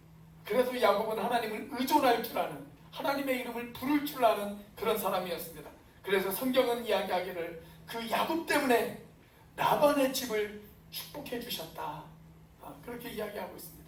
그래서 야곱은 하나님을 의존할 줄 아는, 하나님의 이름을 부를 줄 아는 그런 사람이었습니다. 그래서 성경은 이야기하기를 그 야곱 때문에 라반의 집을 축복해 주셨다, 그렇게 이야기하고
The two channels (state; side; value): identical; both; correlation 1.00